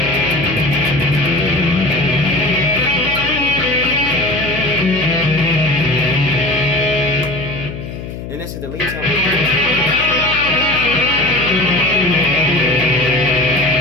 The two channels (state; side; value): noise; left; hum, 9 dB below the sound